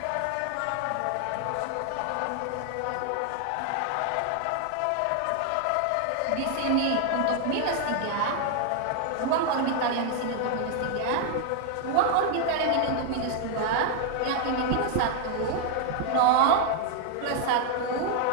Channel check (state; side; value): different; both; correlation 0.00